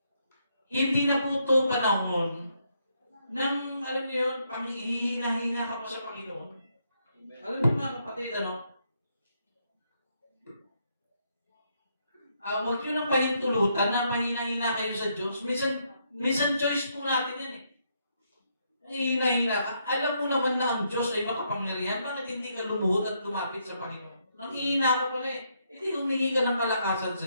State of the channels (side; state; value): both; inverted; correlation -0.76